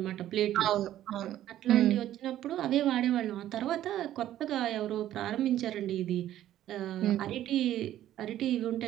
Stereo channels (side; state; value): left; quieter; 12.6 dB